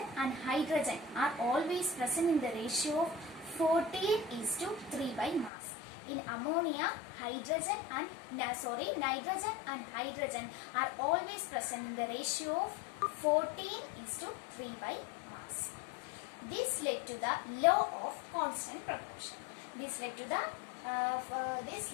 and hydrogen are always present in the ratio of 14:3 by mass. In ammonia, nitrogen and hydrogen are always present in the ratio of 14:3 by mass. This led to the law of constant proportion. This led to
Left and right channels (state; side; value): drops out; right; at 5.5 s